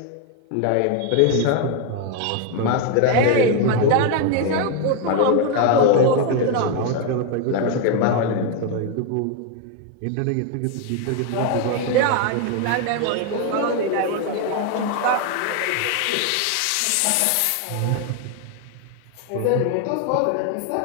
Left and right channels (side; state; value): both; different; correlation 0.01